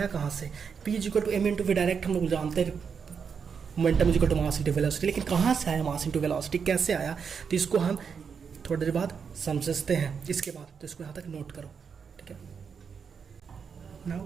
कहाँ से। p is equal to m into v direct हम लोग जानते हैं momentum is equal to mass into velocity. लेकिन कहाँ से आया मास इंटू वेलोसिटी, कैसे आया? तो इसको हम थोड़ी देर बाद समझते हैं इसके बाद। तो इसको यहाँ तक नोट करो। ठीक है,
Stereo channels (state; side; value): quieter; left; 6.4 dB